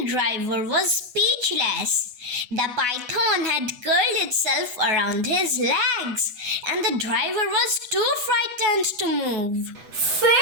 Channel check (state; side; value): late; left; 8.1 ms